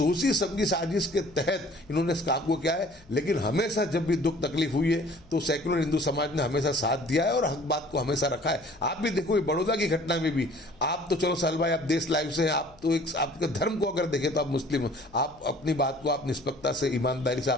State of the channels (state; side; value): noise; left; hum, 26 dB below the sound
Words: समझी साजिश के तहत इन्होंने इस काम को किया है। लेकिन हमेशा जब भी दुख तकलीफ हुई है तो सेक्युलर हिंदू समाज ने हमेशा साथ दिया है और हक बात को हमेशा रखा है। आप भी देखो बड़ौदा की घटना में भी, आप तो चलो साल भाई आप देश लाइव से हैं, आप तो एक आपके धर्म को अगर देखें तो आप मुस्लिम हो, आप अपनी बात को आप निष्पक्षता से ईमानदारी से